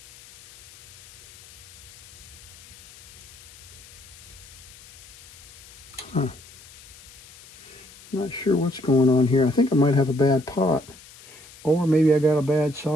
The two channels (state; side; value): noise; left; hiss, 21 dB below the sound